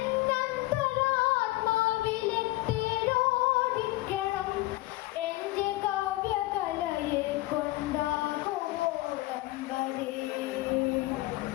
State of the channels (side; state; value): right; quieter; 19.1 dB